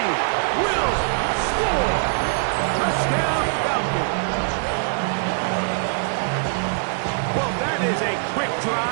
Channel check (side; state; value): left; silent; 64 dB below the other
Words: will score. Touchdown, Falcons. Well, that is a quick